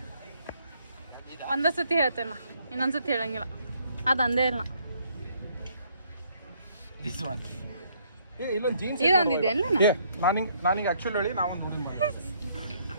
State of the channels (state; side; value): inverted; both; correlation -0.67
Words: ಒಂದೇ ಸತಿ ಹೇಳ್ತೇನೆ ನಾ, ಇನ್ನೊಂದ್ಸತಿ ಹೇಳಂಗಿಲ್ಲ. ಅದು ಅಂದೇ ಇಲ್ಲ. ದಿಸ್ ಒನ್ ಇಲ್ಲ ಜೀನ್ಸ್ ಇದೊಂದಿದೆ ಅಲ್ಲ. ನಾನಿಂಗೆ ಆಕ್ಚುಲಿ ಹೇಳಿ ನಾವೊಂದು